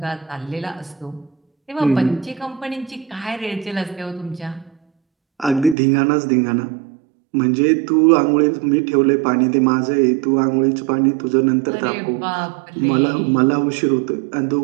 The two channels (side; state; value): left; drops out; at 5.8 s